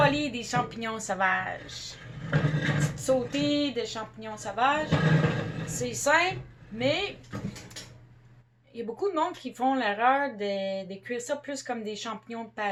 des champignons sauvages. Sauter des champignons sauvages. C'est simple, mais il y a beaucoup de monde qui font l'erreur de cuire ça plus comme des champignons de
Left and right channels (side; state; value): both; identical; correlation 1.00